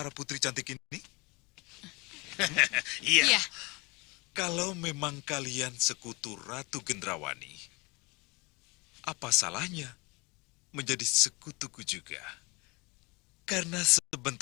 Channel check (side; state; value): right; quieter; 26.5 dB